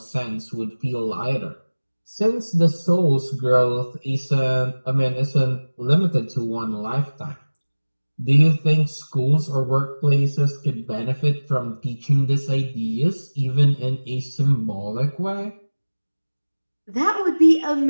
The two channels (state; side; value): inverted; both; correlation -1.00